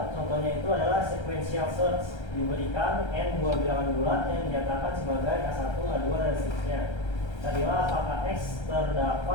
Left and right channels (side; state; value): right; late; 1.3 ms